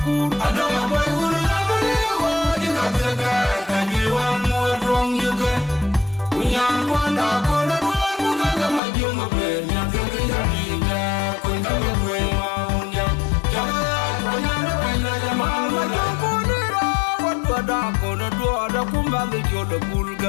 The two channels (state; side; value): drops out; right; at 8.8 s